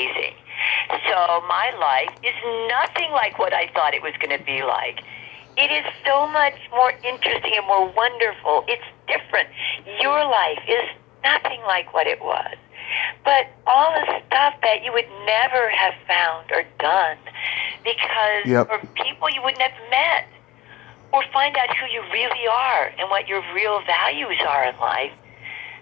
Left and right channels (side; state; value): right; quieter; 14.5 dB